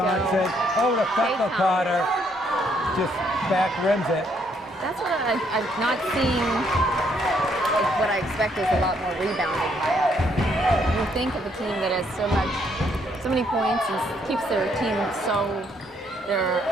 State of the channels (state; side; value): normal; both; correlation 0.70